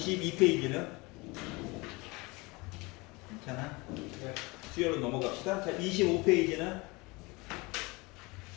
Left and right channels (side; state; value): right; quieter; 24.9 dB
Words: 괜찮아? 네. 수요로 넘어갑시다. 자, 25페이지는?